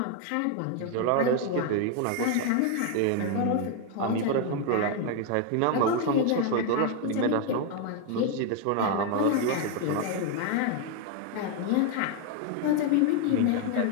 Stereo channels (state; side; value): different; both; correlation 0.01